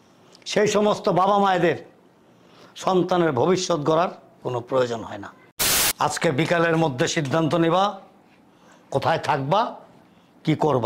সেই সমস্ত বাবা মায়েদের সন্তানের ভবিষ্যৎ গড়ার কোনো প্রয়োজন হয় না। আজকে বিকালের মধ্যে সিদ্ধান্ত নেবা কোথায় থাকবা, কি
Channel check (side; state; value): both; identical; correlation 1.00